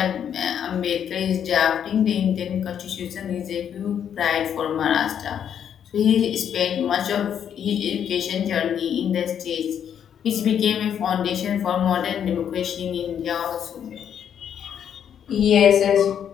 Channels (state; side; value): quieter; right; 8.8 dB